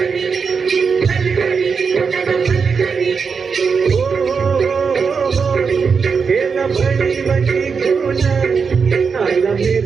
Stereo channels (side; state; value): left; quieter; 5.6 dB